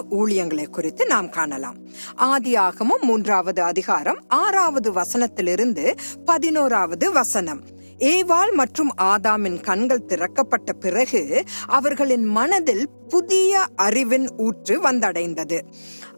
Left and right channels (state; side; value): inverted; both; correlation -1.00